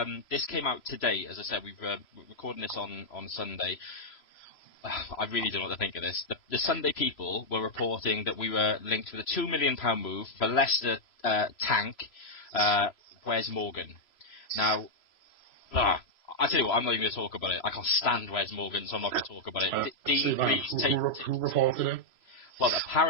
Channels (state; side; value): late; right; 3.0 ms